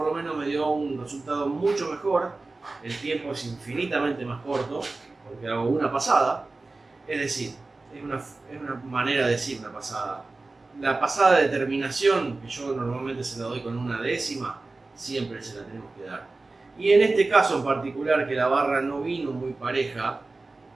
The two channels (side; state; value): left; quieter; 3.4 dB